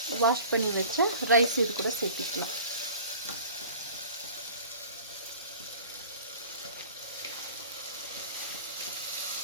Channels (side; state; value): both; inverted; correlation -0.44